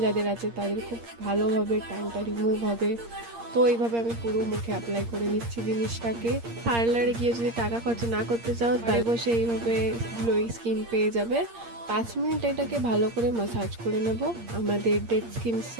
যাদের আছে তাদের খুব ভালোভাবে ট্যানটা রিমুভ হবে। তো এইভাবে আমি পুরো মুখে অ্যাপ্লাই করে নিচ্ছি জিনিসটাকে। পার্লারে গিয়ে যদি টাকা খরচা না করতে চাও তাহলে বসে এইভাবে গ্লোয়িং স্কিন পেয়ে যাবে। 5 মিনিট এটাকে ভালো করে মাসাজ করে নেব। আমাদের ডেড স্কিন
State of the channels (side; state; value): left; late; 8.6 ms